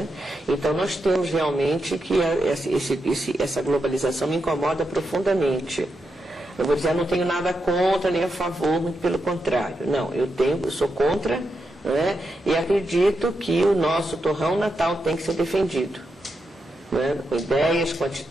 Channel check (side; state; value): both; normal; correlation 0.85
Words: Então nós temos realmente que essa globalização me incomoda profundamente. Eu vou dizer, eu não tenho nada contra nem a favor, muito pelo contrário. Não, eu sou contra, né? E acredito que o nosso torrão natal tem que ser defendido, né? Com ideias, com